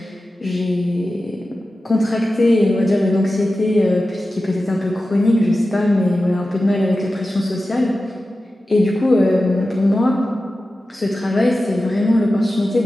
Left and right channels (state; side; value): normal; both; correlation 0.94